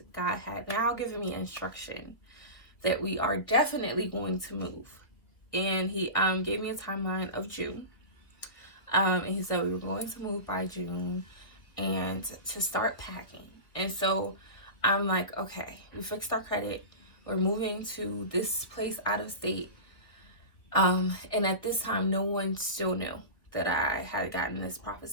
God had now given me instruction that we are definitely going to move. And he gave me a timeline of June. And he said we were going to move by June and to start packing. And so I'm like, okay, we fixed our credit. We're moving to this place out of state. And at this time, no one still knew that I had gotten this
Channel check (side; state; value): right; late; 1.7 ms